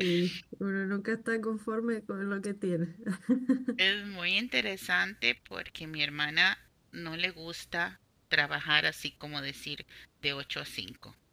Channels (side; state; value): both; identical; correlation 1.00